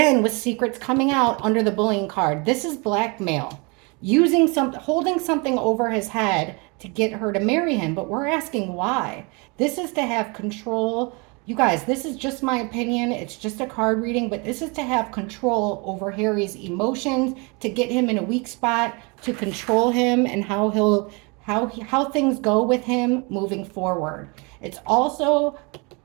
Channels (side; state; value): left; quieter; 30.1 dB